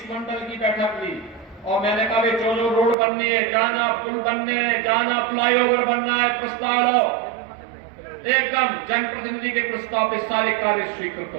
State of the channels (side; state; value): left; drops out; at 3.0 s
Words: मंडल की बैठक ली, और मैंने कहा जो रोड बननी है, जाना पुल बनने हैं, जाना फ्लाईओवर बनना है, प्रस्ताव लो, एकदम जनप्रतिनिधि के प्रस्ताव पे सारे कार्य स्वीकृत